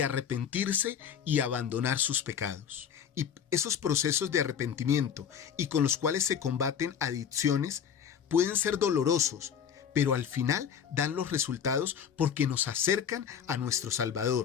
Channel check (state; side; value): quieter; right; 8.0 dB